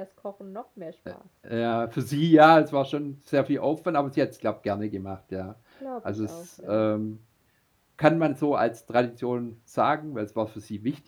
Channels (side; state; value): both; identical; correlation 1.00